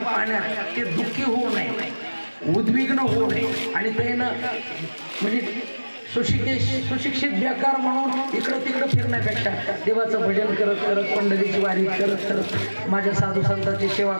पाहण्यात ते दुःखी होऊ नये, उद्विग्न होऊ नये. आणि ते म्हणजे सुशिक्षित बेकार म्हणून इकडं तिकडं फिरण्यापेक्षा देवाचं भजन करत करत, पंढरीची वारी करत करत, माझ्या साधू संतांची सेवा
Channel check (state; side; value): inverted; both; correlation -1.00